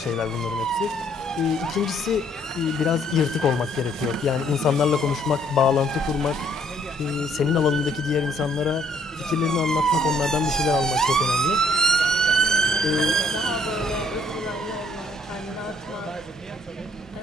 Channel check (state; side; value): normal; both; correlation 0.65